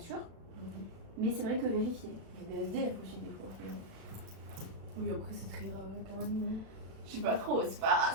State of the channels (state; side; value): late; left; 36 ms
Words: Mais c'est vrai que vérifier. Il y a des SDF aussi des fois. Oui, après c'est très rare quand même. Je sais pas trop, c'est pas